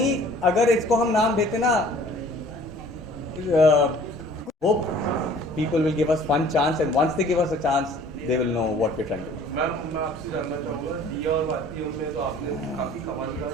अगर इसको हम नाम देते ना hope people will give us one chance, and once they give us a chance they will know what we're trying to do. मैं आपसे जानना चाहूँगा, दिया और बातियों में तो आपने काफ़ी कमाल का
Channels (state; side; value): normal; both; correlation 0.51